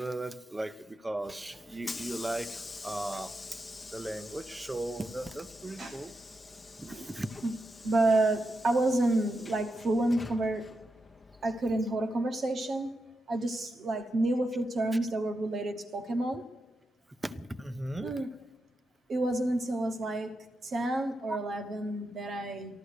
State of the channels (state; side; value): normal; both; correlation 0.87